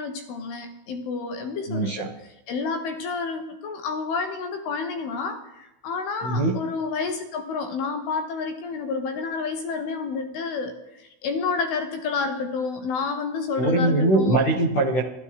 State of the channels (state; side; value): late; right; 16 ms